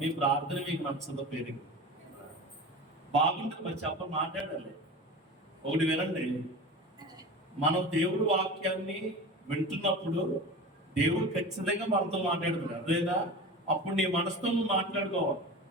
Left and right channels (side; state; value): both; normal; correlation 0.32